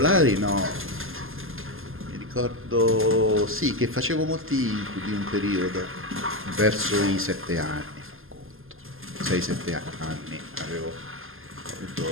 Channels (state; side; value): late; left; 0.60 ms